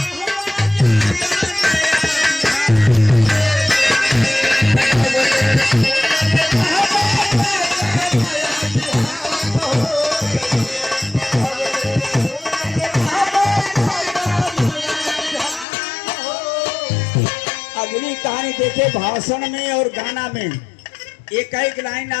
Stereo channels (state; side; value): drops out; right; at 15.7 s